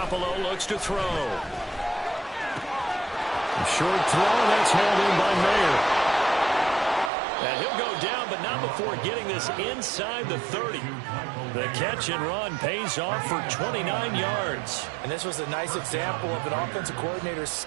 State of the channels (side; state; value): left; drops out; at 7.1 s